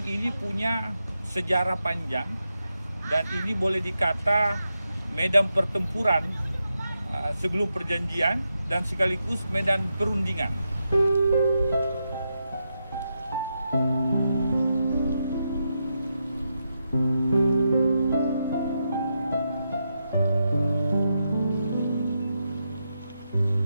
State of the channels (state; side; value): inverted; both; correlation -0.85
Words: ini punya sejarah panjang dan ini boleh dikata medan pertempuran sebelum perjanjian dan sekaligus medan perundingan.